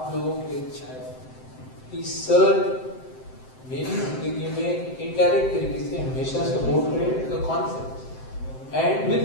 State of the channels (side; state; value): right; late; 7.8 ms